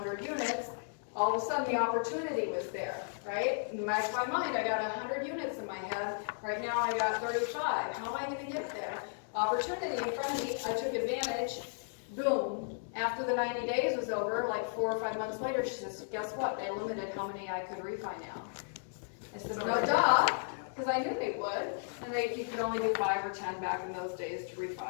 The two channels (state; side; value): silent; right; digital silence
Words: units, all of a sudden the opportunity was there, right? In the back of my mind, I got 100 units in my head, right now I got 35, how am I gonna get there? Opportunity in front of me, I took advantage, boom. After the 90 days was over, like 4 or 5 months later, she says, guess what, they limited how many I could refi now. I said, no duh, because I knew they would, and you could only do 5 or 10 back in those days to